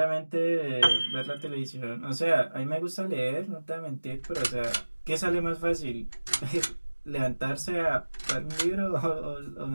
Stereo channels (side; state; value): both; inverted; correlation -1.00